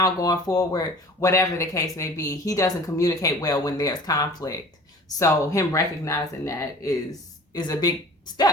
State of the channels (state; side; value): normal; both; correlation 0.45